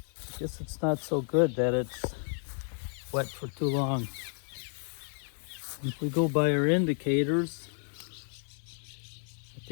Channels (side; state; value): right; silent; 57 dB below the other